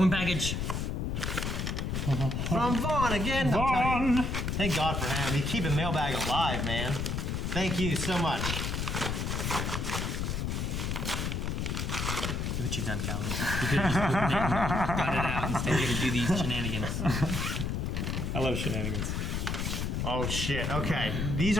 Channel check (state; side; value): noise; left; rumble, 1 dB below the sound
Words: package. From Vaughn again. I'm telling you. Vaughn! Thank God for him. He's keeping Mailbag alive, man. Thank you so much. Look what you've done, Calvin. You could have just opened it and got it out instead of to do these shenanigans. I love shenanigans. Oh shit. Okay. These